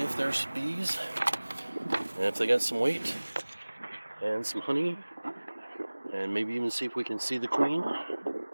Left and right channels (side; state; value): both; inverted; correlation -1.00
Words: if there's bees and if they got some weight and some honey, and maybe even see if we can see the queen